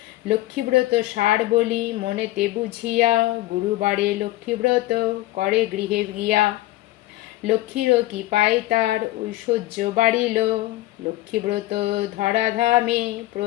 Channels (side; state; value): right; quieter; 17.1 dB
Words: লক্ষ্মীব্রত সার বলি মনেতে বুঝিয়া, গুরুবারে লক্ষ্মীব্রত করে গৃহে গিয়া। লক্ষ্মীরও কি পায় তার ঐশ্বর্য বাড়িল, লক্ষ্মীব্রত ধরাধামে